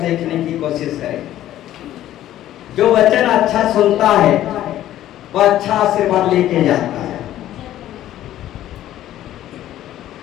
की कोशिश करे। जो वचन अच्छा सुनता है वो अच्छा आशीर्वाद लेके जाता है।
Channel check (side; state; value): right; quieter; 13.0 dB